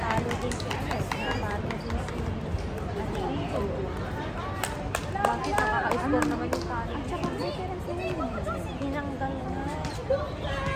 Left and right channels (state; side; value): identical; both; correlation 1.00